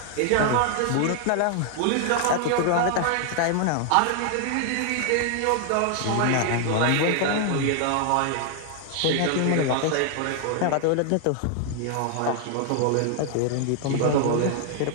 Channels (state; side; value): different; both; correlation 0.00